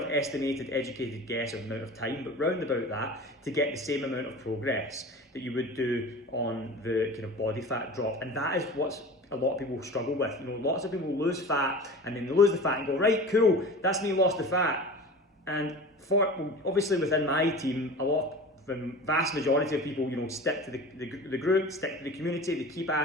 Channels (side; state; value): both; normal; correlation 0.36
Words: estimated, educated guess of amount of time, but round about that, to get the same amount of progress that you would do on the kind of body fat drop. And that is what a lot of people struggle with. Lots of people lose fat, and then they lose the fat and go, right, cool, that's me lost the fat. And obviously within my team, the vast majority of people, stick to the group, stick to the community, they keep